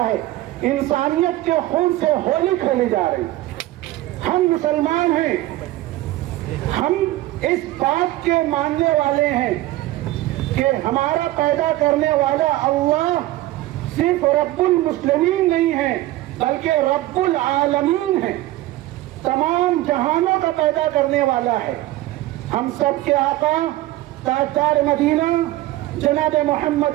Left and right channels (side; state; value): left; quieter; 16.5 dB